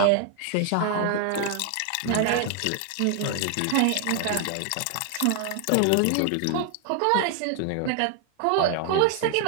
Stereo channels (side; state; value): both; different; correlation 0.00